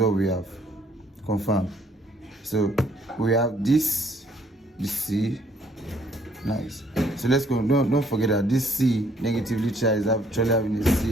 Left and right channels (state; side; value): normal; both; correlation 0.64